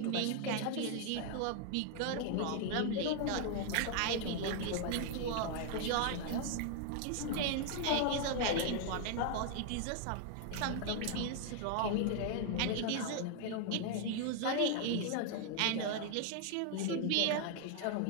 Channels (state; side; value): different; both; correlation 0.00